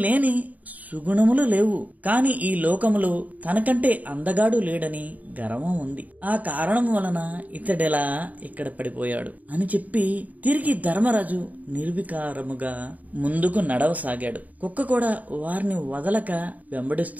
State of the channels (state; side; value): late; left; 0.074 ms